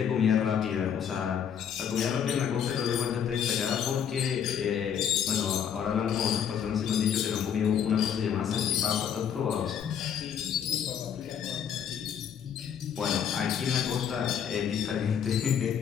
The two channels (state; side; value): quieter; right; 8.3 dB